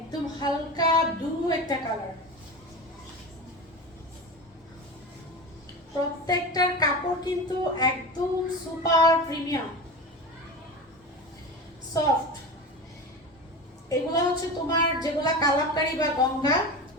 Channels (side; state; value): both; normal; correlation 0.27